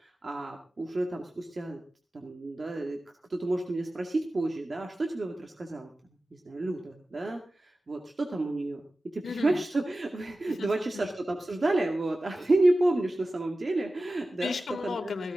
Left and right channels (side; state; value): both; normal; correlation 0.95